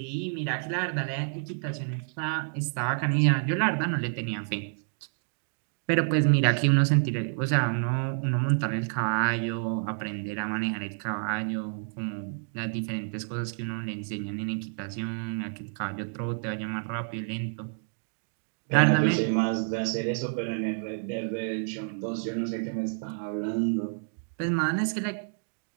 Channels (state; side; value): silent; left; digital silence